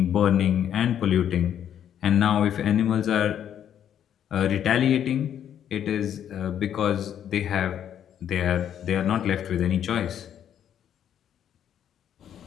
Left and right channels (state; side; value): quieter; right; 9.6 dB